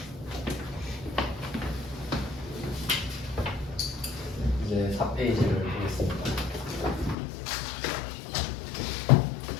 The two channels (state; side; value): drops out; right; at 7.2 s